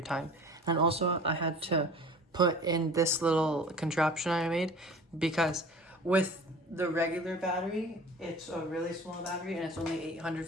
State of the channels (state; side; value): normal; both; correlation 0.42